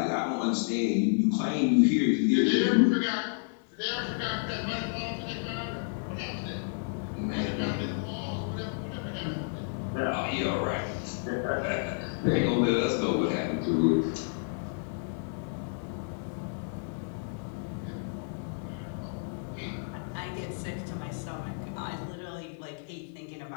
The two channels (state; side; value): silent; right; digital silence